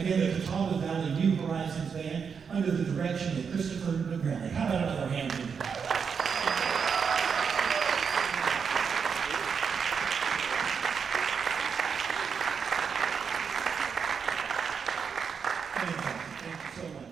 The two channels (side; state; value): left; quieter; 6.3 dB